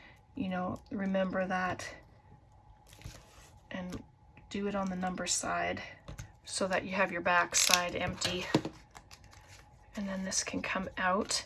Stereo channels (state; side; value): identical; both; correlation 1.00